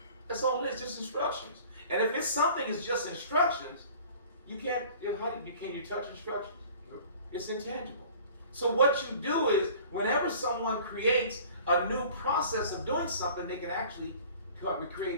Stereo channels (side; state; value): both; inverted; correlation -0.47